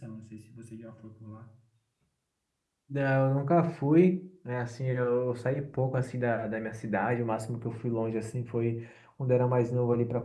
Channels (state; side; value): identical; both; correlation 1.00